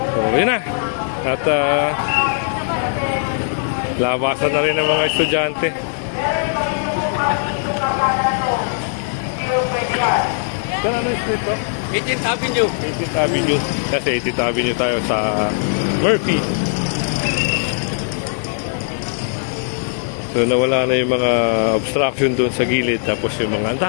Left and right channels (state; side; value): silent; right; digital silence